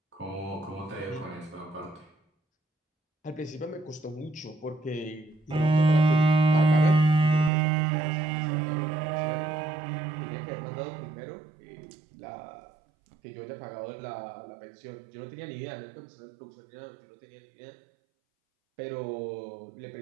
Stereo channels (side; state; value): left; drops out; at 7.5 s